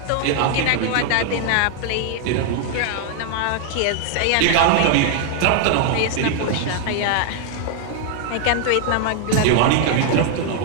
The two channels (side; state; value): both; different; correlation 0.00